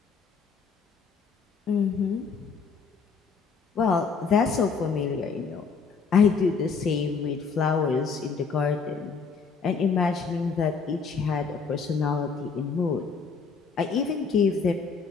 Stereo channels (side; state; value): right; quieter; 5.3 dB